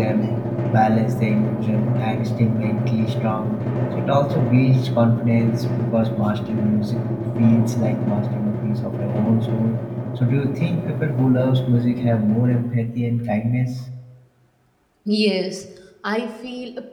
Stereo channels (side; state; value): both; identical; correlation 1.00